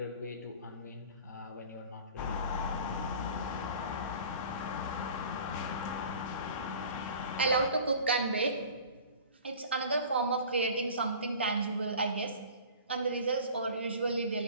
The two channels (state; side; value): inverted; both; correlation -0.43